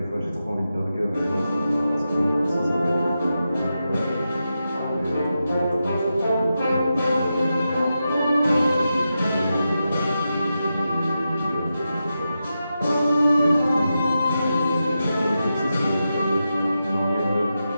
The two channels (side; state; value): both; inverted; correlation -0.89